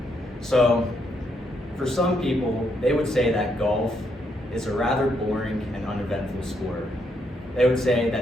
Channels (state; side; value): normal; both; correlation 0.76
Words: So for some people, they would say that golf is a rather boring and uneventful sport. They would say that